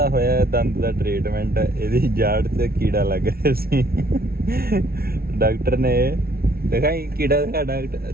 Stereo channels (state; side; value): late; left; 0.44 ms